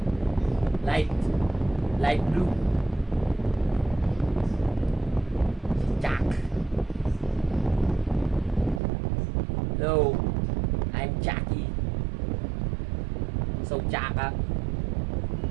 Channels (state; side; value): drops out; left; at 8.8 s